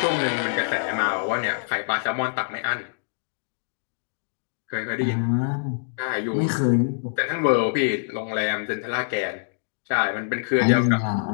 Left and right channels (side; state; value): right; silent; digital silence